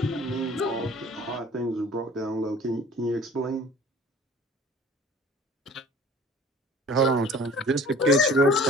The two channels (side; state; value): both; normal; correlation 0.48